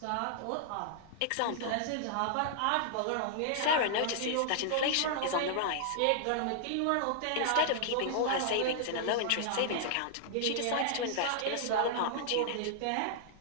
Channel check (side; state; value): both; different; correlation -0.01